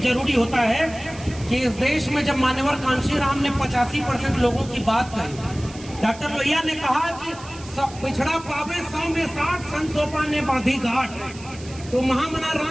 होता है कि इस देश में जब मान्यवर कांशीराम ने 85% लोगों की बात कही, डॉक्टर लोहिया ने कहा कि सब पिछड़ा पावे 100 में 60, संतोपा ने बांधी घाट, तो महामना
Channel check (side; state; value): right; noise; hiss, 18 dB below the sound